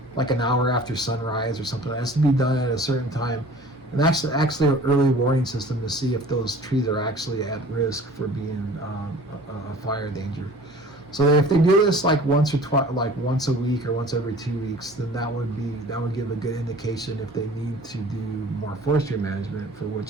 like an hour after sunrise or something. It has to be done at a certain time. And actually an early warning system to see if those trees are actually at risk for being a fire danger. So if they do this once a week or once every 2 weeks, then that would give a good indication if they need to do more forestry management for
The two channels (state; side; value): normal; both; correlation 0.46